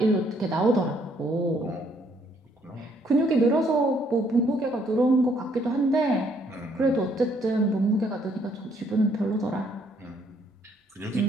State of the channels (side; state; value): both; normal; correlation 0.68